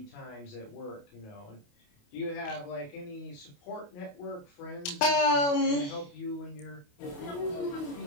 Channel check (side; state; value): right; late; 28 ms